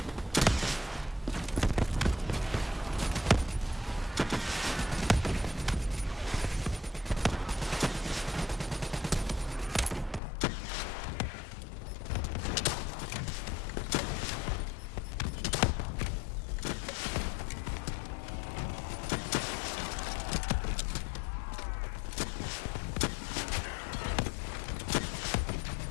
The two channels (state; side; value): drops out; right; at 10.2 s